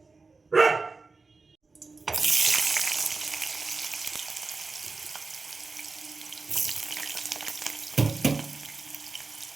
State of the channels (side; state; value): left; quieter; 4.0 dB